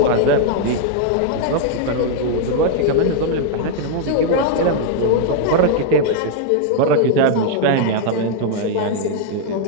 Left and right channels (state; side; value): different; both; correlation 0.00